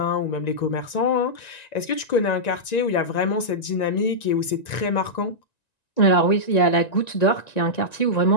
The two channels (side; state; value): right; late; 1.9 ms